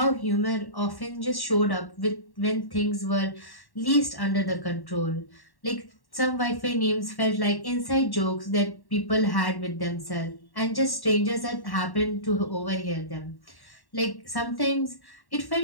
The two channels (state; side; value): late; right; 1.1 ms